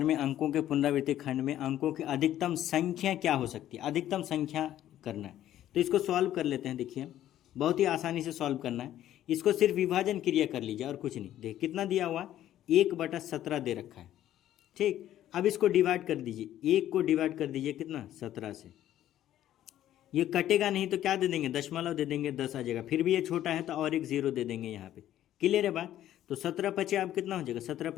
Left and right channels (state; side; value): quieter; right; 12.3 dB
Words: में अंकों के पुनरावृत्ति खंड में अंकों की अधिकतम संख्या क्या हो सकती है, अधिकतम संख्या करना है। तो इसको सॉल्व कर लेते हैं। देखिए बहुत ही आसानी से सॉल्व करना है। इसको सिर्फ विभाजन क्रिया कर लीजिए और कुछ नहीं। देख कितना दिया हुआ, 1/17 दे रखा है। ठीक, अब इसको डिवाइड कर दीजिए, 1 को डिवाइड कर दीजिए कितना, 17 से। ये कटेगा नहीं तो क्या दे देंगे, दशमलव दे देंगे, 10 आ जाएगा। फिर भी ये छोटा है तो और एक 0 दे देंगे यहाँ पे। क्लियर है बात। तो 17×5 अब कितना हो जाएगा,